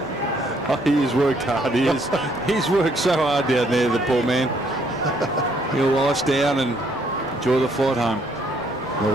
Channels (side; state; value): right; noise; rumble, 23 dB below the sound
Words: Oh, he has worked hard. He's worked so hard down there, the poor man. He'll ice down and enjoy the flight home.